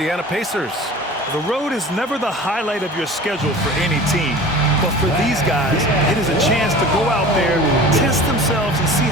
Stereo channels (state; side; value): normal; both; correlation 0.40